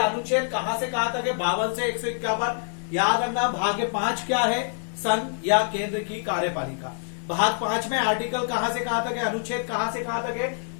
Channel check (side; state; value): right; silent; digital silence